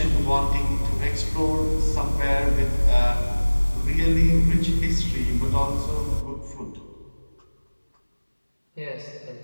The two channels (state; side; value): inverted; both; correlation -1.00